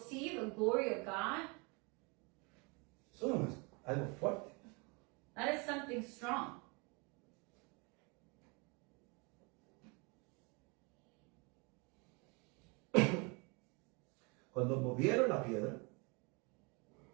the glory of God? Eso no es algo fuerte. That is something strong. Cuando movieron la piedra,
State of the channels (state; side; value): quieter; left; 30.2 dB